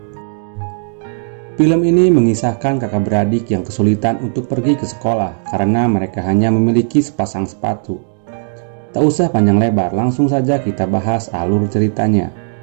Film ini mengisahkan kakak beradik yang kesulitan untuk pergi ke sekolah karena mereka hanya memiliki sepasang sepatu. Tak usah panjang lebar, langsung saja kita bahas alur ceritanya.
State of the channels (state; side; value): silent; left; digital silence